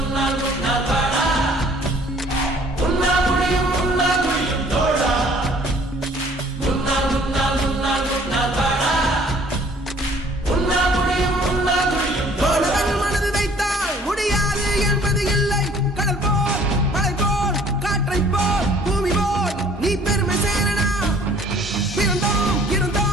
உன்னால் வாடா, உன்னால் முடியும் தோழா. உன்னால் உன்னால் உன்னால் உன்னால் வாடா, உன்னால் முடியும் தோழா. மாணவன் மனது வைத்தால் முடியாது என்பது இல்லை. கடல் போல் மலை போல் காற்றை போல் பூமி போல் நீ பெருமை சேரனா. பிறந்தோம்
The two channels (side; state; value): both; normal; correlation 0.56